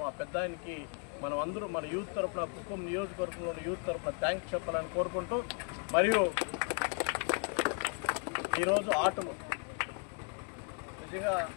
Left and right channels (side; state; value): right; quieter; 38.1 dB